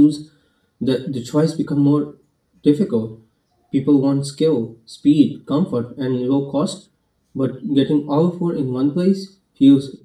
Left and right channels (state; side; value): identical; both; correlation 1.00